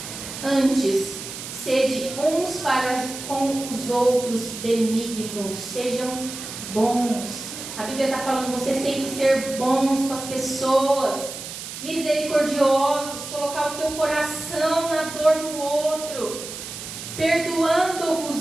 Antes, sede uns para com os outros benignos, sejam bons. A Bíblia está falando, vocês têm que ser bons com as pessoas, misericordiosos, colocar o teu coração na dor do outro,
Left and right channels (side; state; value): right; noise; hiss, 10 dB below the sound